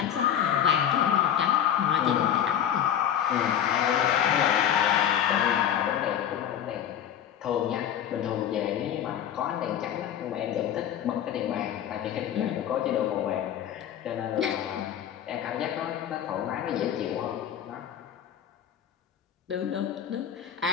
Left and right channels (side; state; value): right; quieter; 9.8 dB